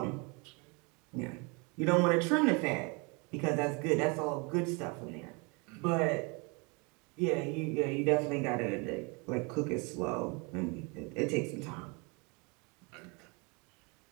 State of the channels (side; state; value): left; quieter; 30.4 dB